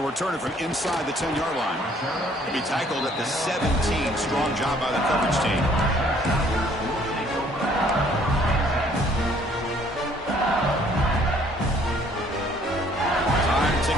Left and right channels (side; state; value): both; normal; correlation 0.61